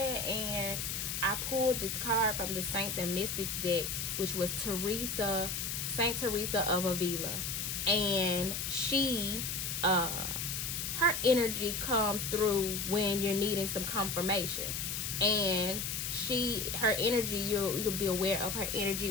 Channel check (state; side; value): noise; left; hiss, 3 dB below the sound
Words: And I pulled this card from the Saints and Mystics deck, which was Saint Teresa of Avila. And she, her energy comes through when you're needing some confirmation. And her energy, you'll be aware of her energy